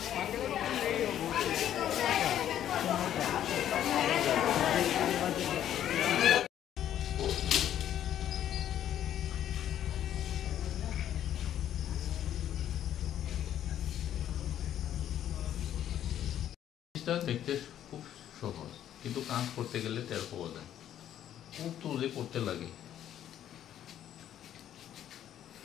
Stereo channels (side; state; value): right; quieter; 11.0 dB